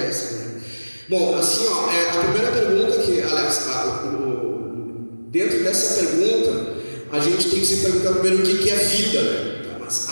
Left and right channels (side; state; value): both; inverted; correlation -1.00